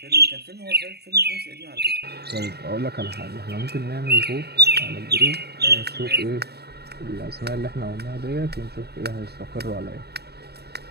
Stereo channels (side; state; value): left; late; 0.47 ms